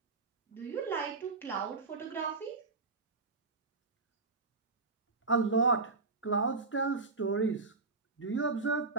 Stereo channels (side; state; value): left; quieter; 3.9 dB